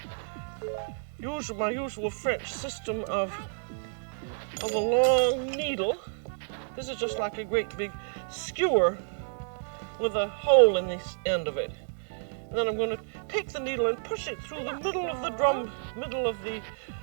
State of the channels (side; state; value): left; silent; digital silence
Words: my usual French system of a long needle. This is just like a great big skewer with a hole in the end of it. And then I'm going to take the needle and push it through the middle of the